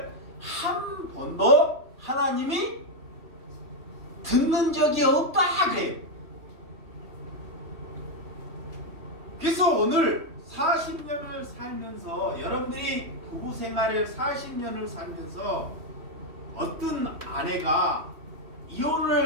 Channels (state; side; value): late; left; 3.1 ms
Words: 한 번도 하나님이 듣는 적이 없다 그래요. 그래서 오늘 40년을 살면서 여러분들이 부부 생활을 40년을 살면서 어떤 아내가